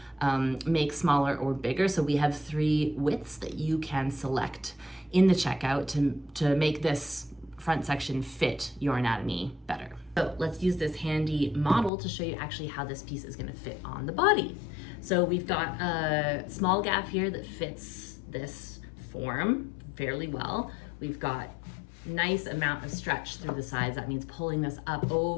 make smaller or bigger. So we have 3 widths that you can select in the checkout to make this front section fit your anatomy better. So let's use this handy model to show you actually how this piece is gonna fit on the body. So we've got a small gaff here that fits this form fairly well. We've got nice amount of stretch through the sides. That means pulling this up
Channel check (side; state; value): right; drops out; at 11.9 s